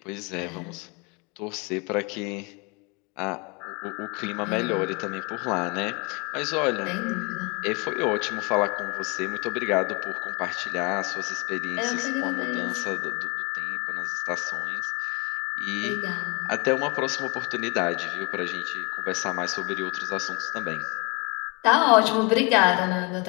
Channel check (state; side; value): quieter; right; 30.0 dB